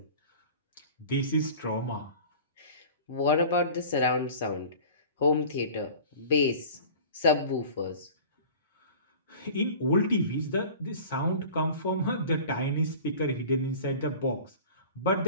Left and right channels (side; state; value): both; inverted; correlation -0.42